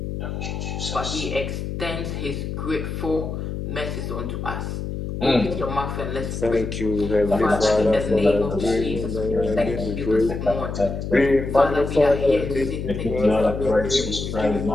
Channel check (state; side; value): noise; left; hum, 5 dB below the sound